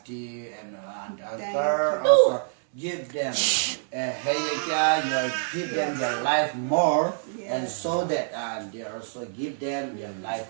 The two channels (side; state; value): left; silent; digital silence